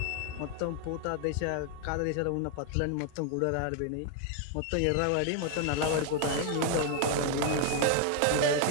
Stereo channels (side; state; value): both; different; correlation 0.00